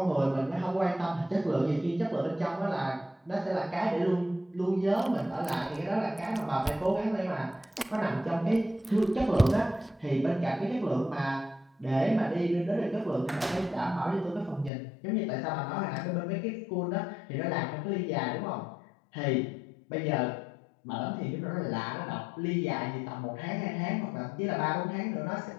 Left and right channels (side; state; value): right; drops out; at 14.7 s